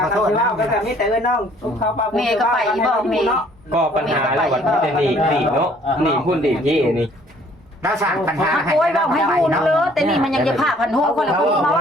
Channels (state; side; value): normal; both; correlation 0.59